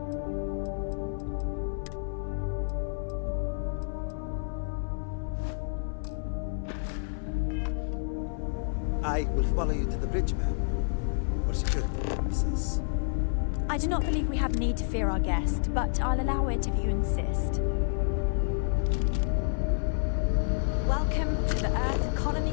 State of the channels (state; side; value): silent; right; 58 dB below the other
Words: I will follow you to the bridge, ma'am. For security purposes. I do not believe we have need to fear our guest, but I'll allow it if you insist. Welcome to the Earth